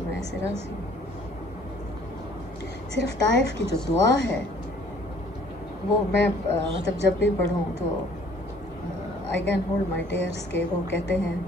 میں ایسے راضی ہوں. صرف طائف کی جو دعا ہے وہ میں مطلب جب بھی پڑھوں تو I can hold my tears, کے وہ کہتے ہیں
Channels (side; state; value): both; normal; correlation 0.57